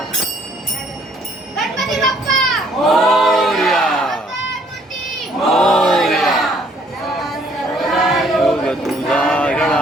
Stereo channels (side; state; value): both; normal; correlation 0.63